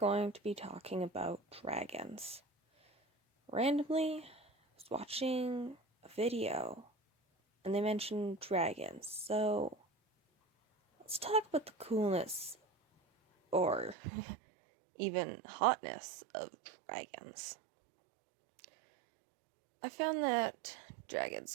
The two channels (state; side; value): drops out; left; at 14.0 s